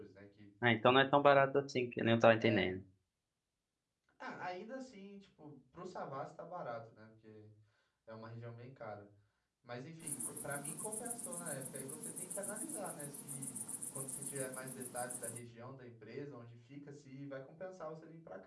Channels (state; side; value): identical; both; correlation 1.00